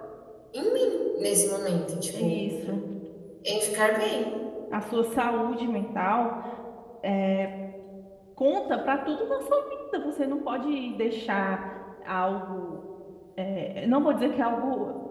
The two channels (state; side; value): identical; both; correlation 1.00